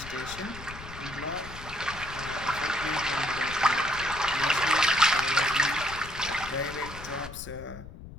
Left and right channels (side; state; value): left; noise; rumble, 14 dB below the sound